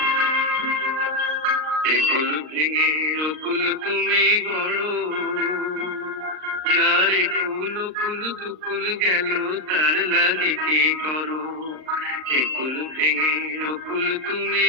একুল ভেঙে অকুল তুমি গড়ো, যারে কুল কুল দুকুল গেল তার লাগে কি করো, একুল ভেঙে অকুল তুমি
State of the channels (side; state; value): left; late; 39 ms